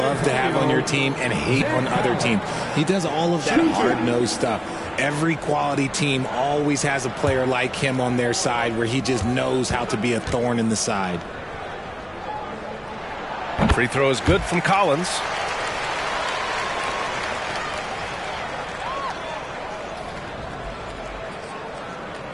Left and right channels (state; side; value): identical; both; correlation 1.00